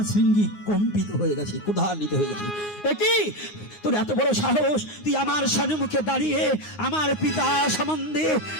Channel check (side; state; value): right; late; 9.6 ms